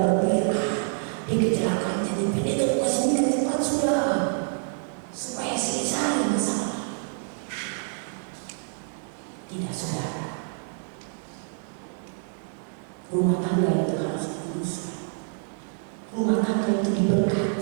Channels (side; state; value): left; silent; digital silence